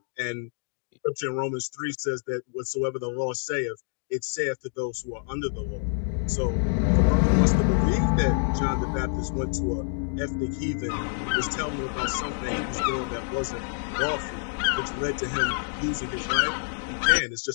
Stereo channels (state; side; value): silent; right; digital silence